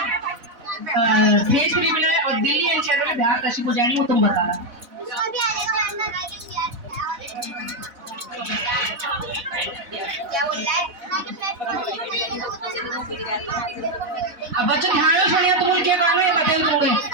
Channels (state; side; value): late; left; 4.0 ms